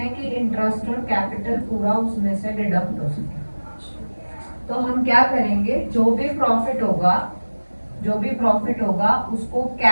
कि इंटरेस्ट और कैपिटल पूरा उसमें से डिडक्ट हो सके, तो हम क्या करेंगे, जो भी प्रॉफिट होगा उसको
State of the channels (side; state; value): both; inverted; correlation -1.00